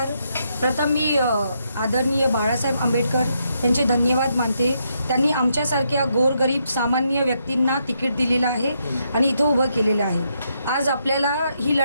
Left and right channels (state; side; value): inverted; both; correlation -0.78